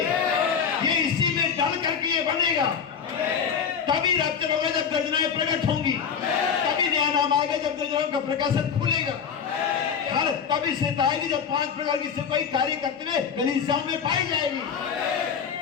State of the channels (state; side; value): quieter; right; 7.0 dB